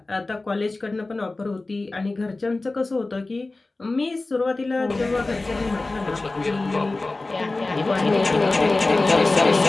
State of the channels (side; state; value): right; quieter; 3.2 dB